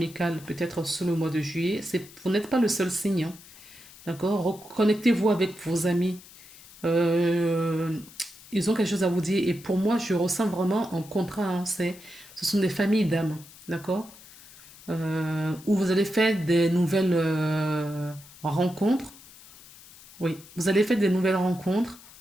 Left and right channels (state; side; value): noise; left; hiss, 21 dB below the sound